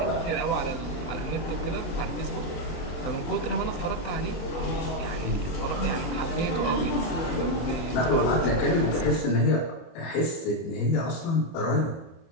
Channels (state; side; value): late; right; 24 ms